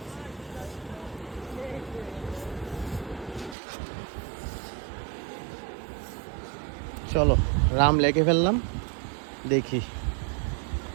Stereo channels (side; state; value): left; drops out; at 3.6 s